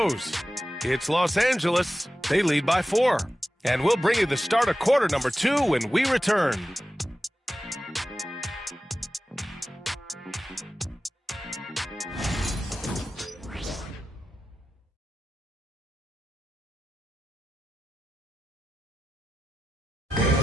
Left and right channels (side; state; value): both; normal; correlation 0.93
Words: It's Los Angeles. They lead by 4. And we'll bring you the start of quarter number 2 when we return.